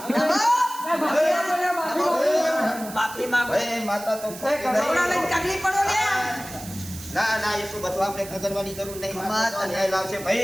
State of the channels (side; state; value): right; noise; hiss, 14 dB below the sound